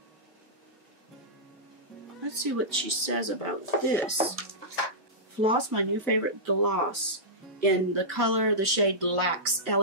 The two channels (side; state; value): both; normal; correlation -0.14